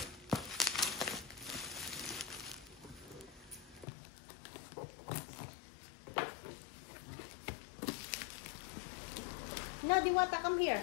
No, Diwata, come here.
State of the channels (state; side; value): drops out; right; at 3.9 s